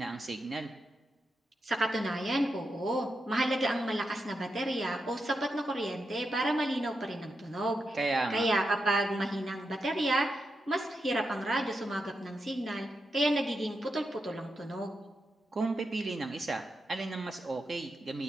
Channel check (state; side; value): normal; both; correlation 0.86